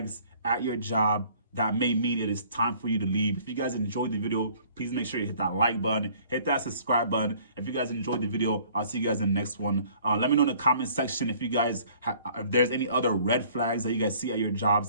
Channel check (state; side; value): inverted; both; correlation -0.56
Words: at your job that may mean it is time for you to leave. If you guys enjoyed the video, please make sure you hit that like button, hit that subscribe button. If you guys enjoyed the video, I'll see you guys in the next one. Let me know in the comment section if you guys if there's any other red flags that you guys see at your